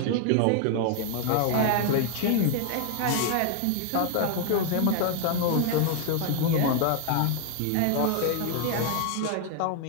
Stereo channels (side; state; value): both; different; correlation 0.00